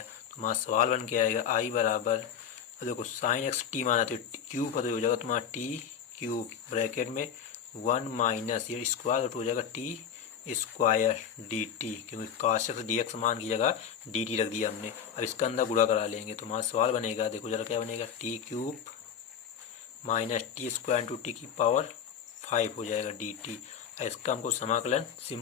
हमारा सवाल बन के आएगा आई बराबर, देखो साइन x t माना तो क्यूब का, तो हो जाएगा तुम्हारा t³ ब्रैकेट में 1 माइनस ये स्क्वायर, तो हो जाएगा t² dt, क्योंकि cos x dx मान की जगह dt रख दिया हमने। अब इसका अंदर गुणा करा लेंगे तो हमारा सवाल बनेगा, देखो जरा क्या बनेगा, t³ minus t² into t की पावर 5 हो जाएगा dt। इसका हमको समाकलन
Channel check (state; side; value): quieter; right; 8.1 dB